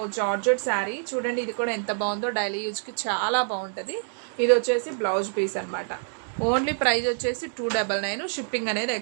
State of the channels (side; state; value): left; silent; digital silence